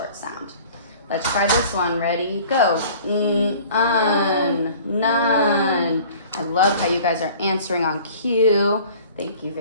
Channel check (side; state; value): both; inverted; correlation -0.47